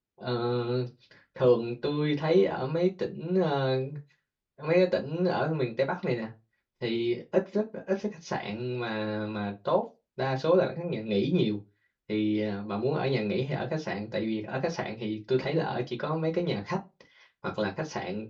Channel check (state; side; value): identical; both; correlation 1.00